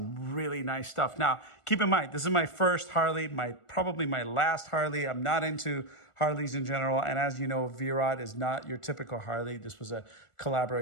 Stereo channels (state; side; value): late; right; 1.4 ms